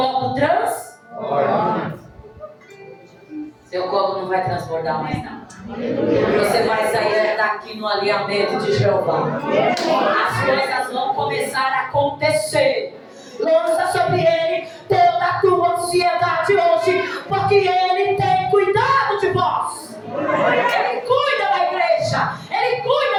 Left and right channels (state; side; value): identical; both; correlation 1.00